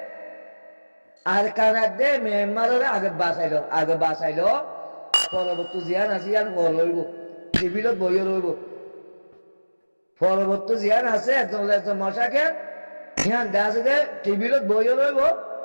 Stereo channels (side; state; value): both; inverted; correlation -1.00